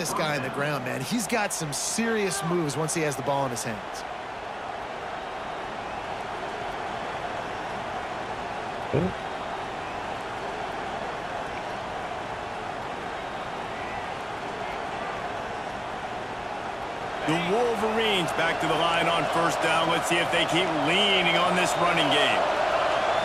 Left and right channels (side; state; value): both; identical; correlation 1.00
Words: guy on the ground, man. He's got some serious moves once he has the ball in his hands. The Wolverines back to the line on first down. Let's see if they keep leaning on this running game.